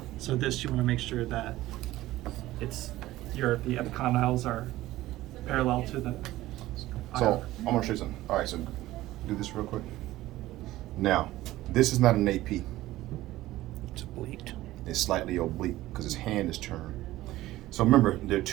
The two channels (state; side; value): quieter; left; 16.3 dB